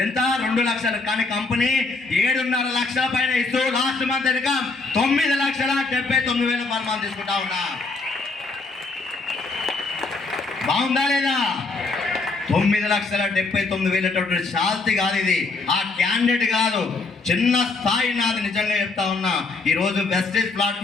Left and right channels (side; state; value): right; quieter; 3.8 dB